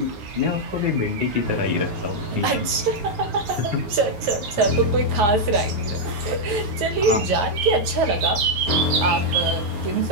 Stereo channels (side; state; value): left; late; 9.5 ms